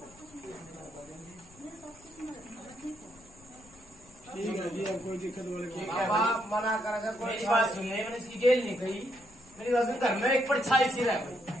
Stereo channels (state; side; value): noise; left; rumble, 25 dB below the sound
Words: ठीक है जी, अब कोई दिक्कत वाली बात ठीक है बाबा भाई। मना करेगा कोई मेरी बात सुन ले, मैंने इसकी गेल नहीं कही। मेरी बात सुन, घर में एक परछाई सी रह भाई।